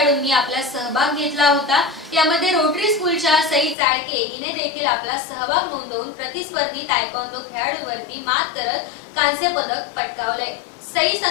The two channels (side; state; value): right; drops out; at 3.8 s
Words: आपला सहभाग घेतला होता. यामध्ये रोटरी स्कूलच्या सई चाळके हिने देखील आपला सहभाग नोंदवून प्रतिस्पर्धी तायक्वांदो खेळाडूंवरती मात करत कांस्य पदक पटकावलंय. सई